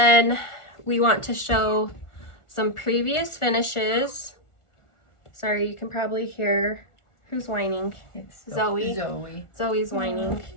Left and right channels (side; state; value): right; late; 1.4 ms